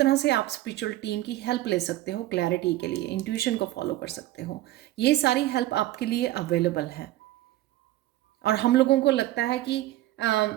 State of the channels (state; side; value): quieter; left; 15.5 dB